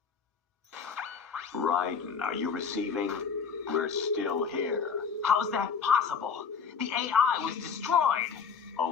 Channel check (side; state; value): right; quieter; 6.2 dB